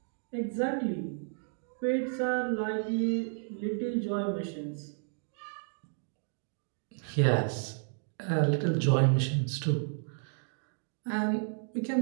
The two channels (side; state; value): left; silent; digital silence